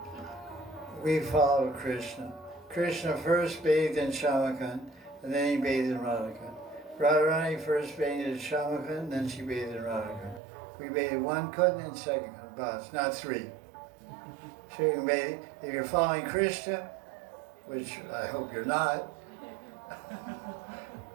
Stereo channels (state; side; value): drops out; left; at 10.4 s